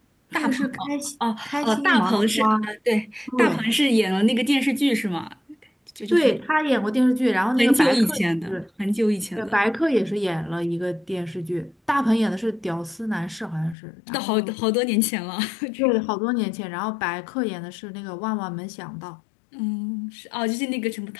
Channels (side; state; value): right; drops out; at 13.8 s